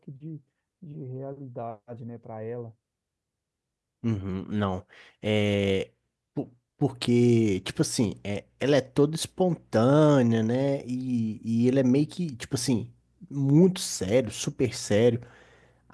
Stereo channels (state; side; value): identical; both; correlation 1.00